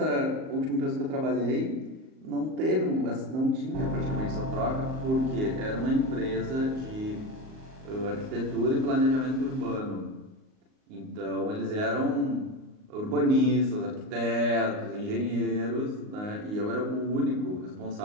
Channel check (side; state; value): left; late; 38 ms